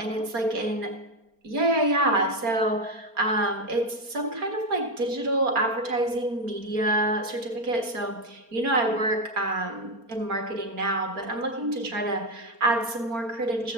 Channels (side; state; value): left; late; 4.3 ms